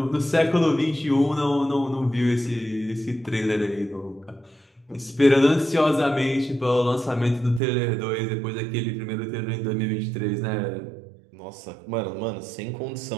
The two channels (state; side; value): drops out; left; at 7.6 s